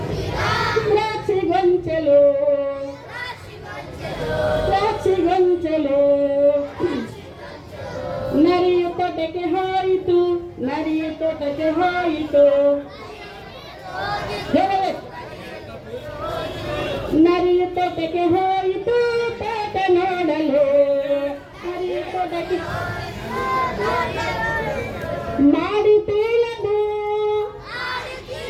ದ್ರಾಕ್ಷಿ ಗೊಂಚಲು, ದ್ರಾಕ್ಷಿ ಗೊಂಚಲು. ನರಿಯ ತೋಟಕ್ಕೆ ಹೋಯಿತು, ನರಿಯ ತೋಟಕ್ಕೆ ಹೋಯಿತು, ನರಿಯ ತೋಟಕ್ಕೆ ಹೋಯಿತು ತೋಟ ನೋಡಲು. ನರಿಯ ತೋಟಕ್ಕೆ ಮಾಡಿತೀನದು,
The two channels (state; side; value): identical; both; correlation 1.00